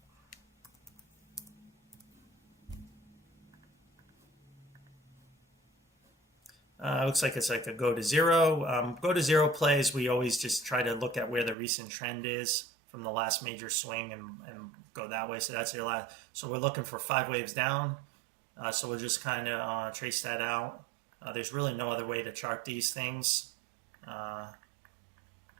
Looks like it's like a go to zero. Go to zero plays, we always just try to look at where the recent trend is from the last major swing and go that way. So that's your last. So we're looking for 5 waves down. So we'll just kind of trace that out. There's really no other way to chart these things.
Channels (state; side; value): drops out; left; at 11.6 s